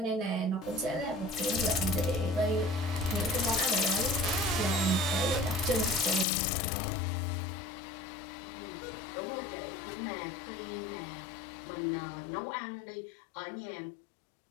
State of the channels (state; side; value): drops out; right; at 6.2 s